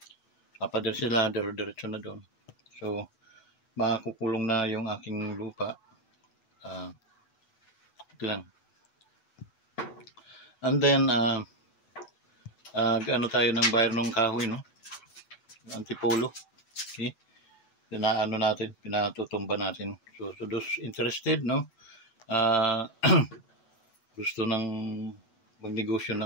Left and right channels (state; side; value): late; right; 8.1 ms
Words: Papader sila, diretso na doon. So makukulong na yung aking lupa. Ito lang. And then ano tayo ng bayar ng kahoy, no? Antipolo. Okay? Pinatutumba natin. So those interested, no? Gusto ng magnegosyo